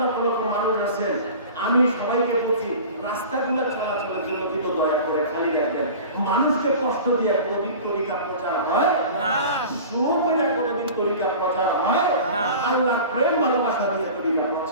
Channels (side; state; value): both; inverted; correlation -0.38